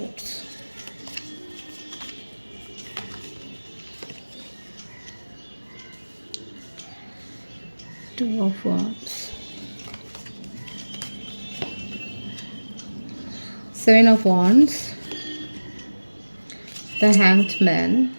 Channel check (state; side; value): inverted; both; correlation -1.00